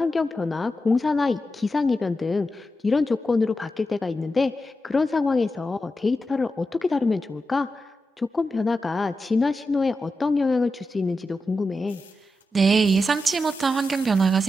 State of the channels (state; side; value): normal; both; correlation 0.89